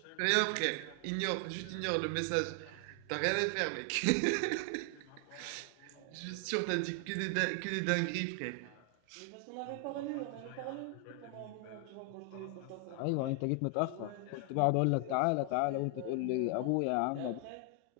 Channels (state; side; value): different; both; correlation 0.00